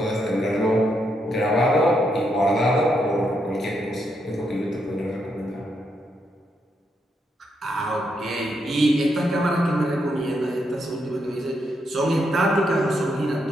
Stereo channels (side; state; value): both; normal; correlation 0.79